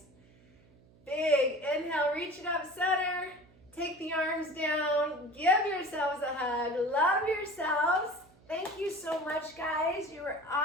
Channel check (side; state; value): right; noise; hum, 28 dB below the sound